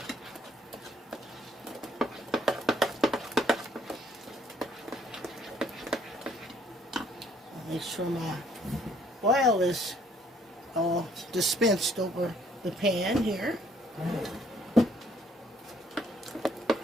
Make sure my oil is all dispensed over the pan here.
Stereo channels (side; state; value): both; normal; correlation 0.64